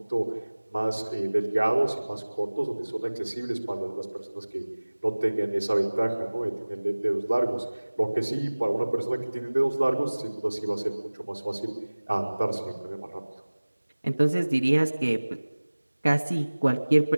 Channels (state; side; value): inverted; both; correlation -1.00